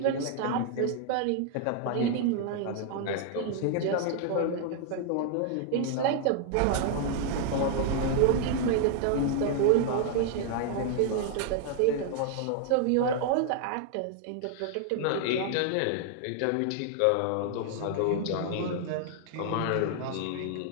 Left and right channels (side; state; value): both; different; correlation 0.00